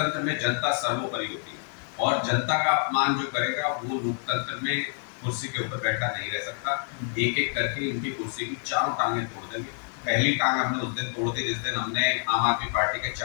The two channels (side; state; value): right; silent; 56 dB below the other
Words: में जनता सर्वोपरि होती है, और जनता का अपमान जो करेगा वो लोकतंत्र में कुर्सी के ऊपर बैठा नहीं रह सकता। एक एक करके इनकी कुर्सी की चारों टांगें तोड़ देंगे। पहली टांग हमने उस दिन तोड़ दी जिस दिन हमने आम आदमी पार्टी के